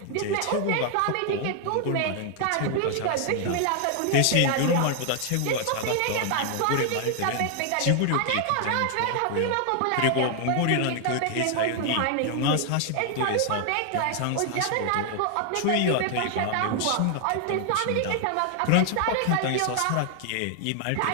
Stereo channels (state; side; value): different; both; correlation 0.00